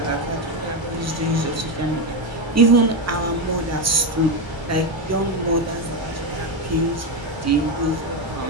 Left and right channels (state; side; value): normal; both; correlation 0.10